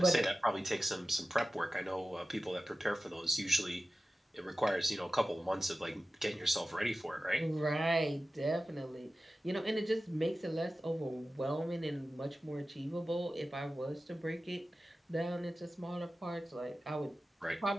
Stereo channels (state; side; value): normal; both; correlation 0.95